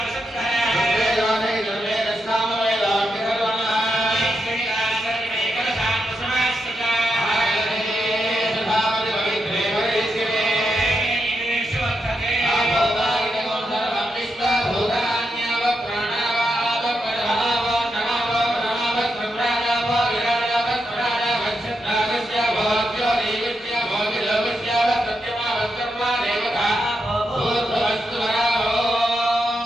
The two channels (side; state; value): both; normal; correlation 0.84